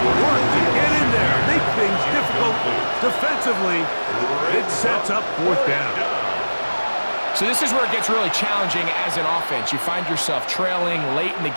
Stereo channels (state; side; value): inverted; both; correlation -1.00